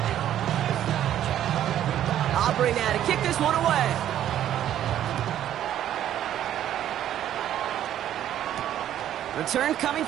Aubrey now to kick this one away. Return coming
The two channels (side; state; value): left; quieter; 11.3 dB